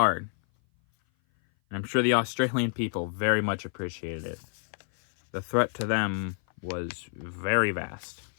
and I'm sure the Australian people very much appreciated it. The threat to them was very vast.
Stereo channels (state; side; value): silent; right; 56 dB below the other